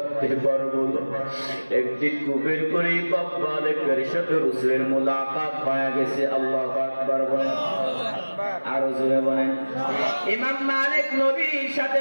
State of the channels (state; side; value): inverted; both; correlation -1.00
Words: পারবো না। একদিন কুবের করে ইমাম মালিকের সাথে রাসূলের মুলাকাত হয়ে গেছে। আল্লাহু আকবার বলেন, আরো জোরে বলেন। ইমাম মালিক নবীর সাথে